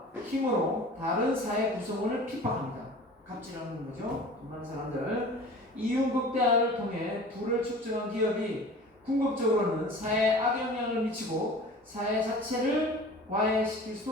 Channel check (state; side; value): normal; both; correlation 0.41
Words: 힘으로 다른 사회 구성원을 핍박합니다. 갑질하는 거죠. 돈 많은 사람들. 이윤 극대화를 통해 부를 축적한 기업이 궁극적으로는 사회에 악영향을 미치고 사회 자체를 와해시킬